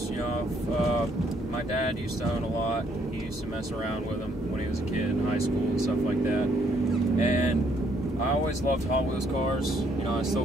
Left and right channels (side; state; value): both; normal; correlation 0.68